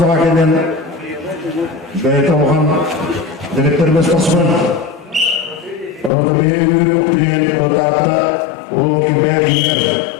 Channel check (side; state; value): right; drops out; at 6.1 s